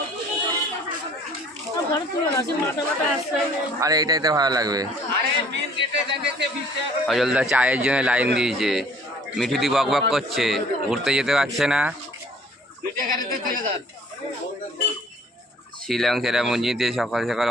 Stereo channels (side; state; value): both; normal; correlation 0.55